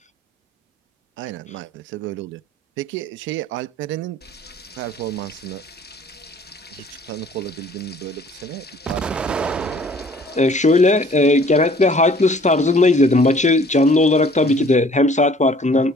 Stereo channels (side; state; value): both; normal; correlation 0.54